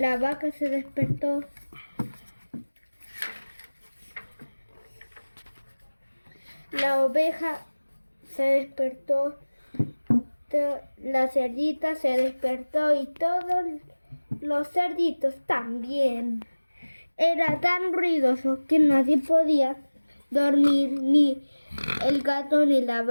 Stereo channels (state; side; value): inverted; both; correlation -1.00